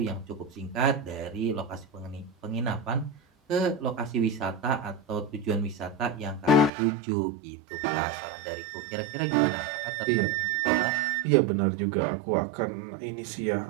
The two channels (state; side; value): drops out; left; at 6.7 s